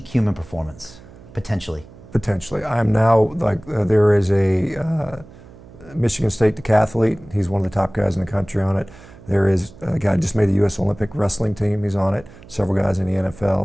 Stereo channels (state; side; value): noise; right; hum, 21 dB below the sound